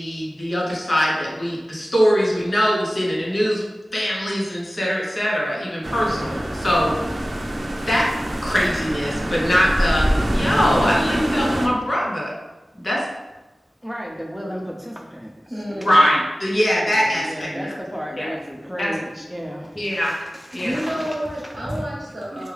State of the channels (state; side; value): normal; both; correlation 0.96